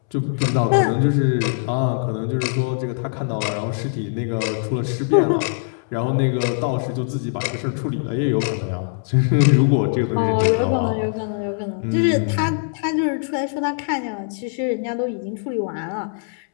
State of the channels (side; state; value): right; silent; 64 dB below the other